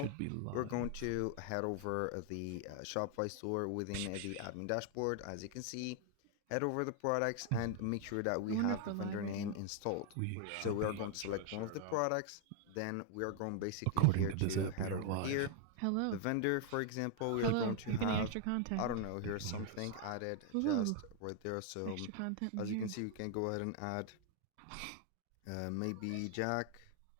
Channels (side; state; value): both; different; correlation 0.00